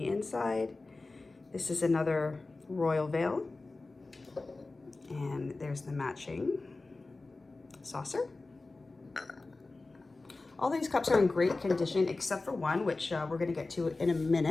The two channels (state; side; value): quieter; right; 3.4 dB